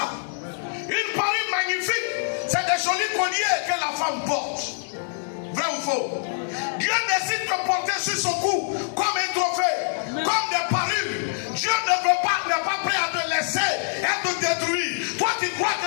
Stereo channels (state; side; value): silent; right; digital silence